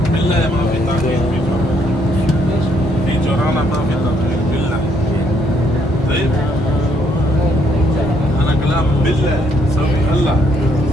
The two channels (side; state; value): both; normal; correlation 0.70